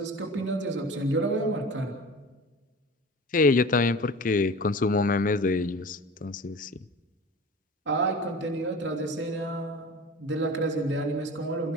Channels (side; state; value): both; normal; correlation 0.37